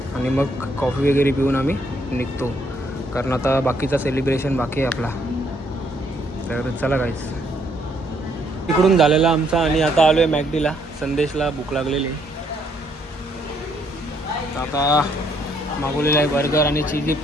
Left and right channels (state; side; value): normal; both; correlation 0.70